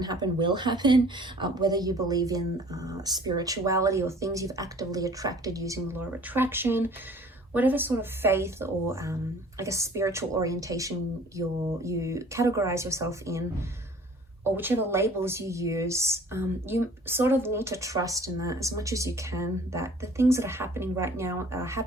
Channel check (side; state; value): both; normal; correlation 0.51